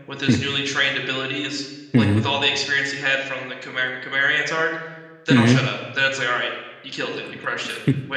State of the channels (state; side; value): identical; both; correlation 1.00